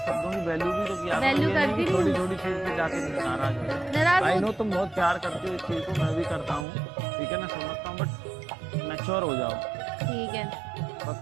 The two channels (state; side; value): drops out; left; at 6.7 s